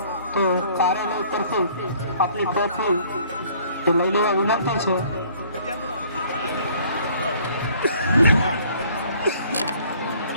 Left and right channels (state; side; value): inverted; both; correlation -0.57